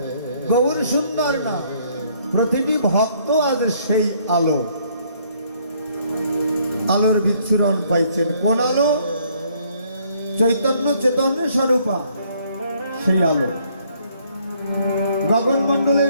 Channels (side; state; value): both; inverted; correlation -0.65